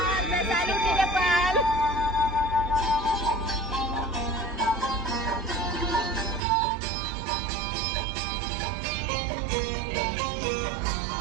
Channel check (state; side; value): drops out; left; at 6.4 s